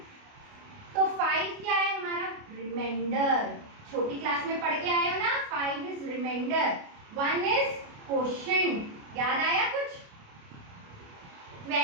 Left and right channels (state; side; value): late; left; 29 ms